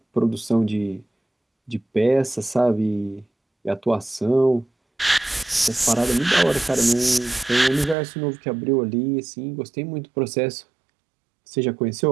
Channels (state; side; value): drops out; left; at 8.0 s